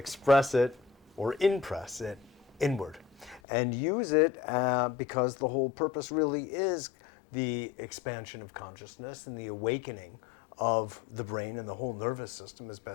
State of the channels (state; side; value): drops out; right; at 3.4 s